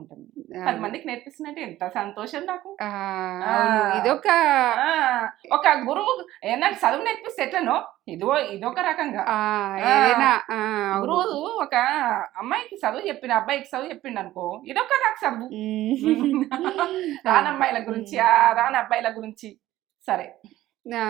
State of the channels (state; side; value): quieter; left; 14.9 dB